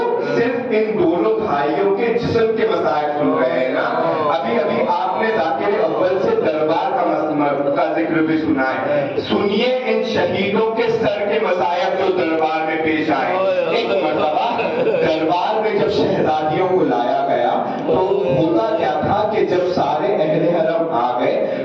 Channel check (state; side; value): identical; both; correlation 1.00